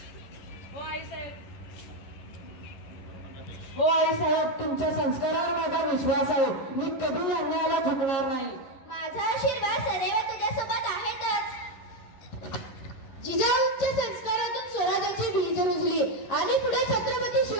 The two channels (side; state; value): right; late; 11 ms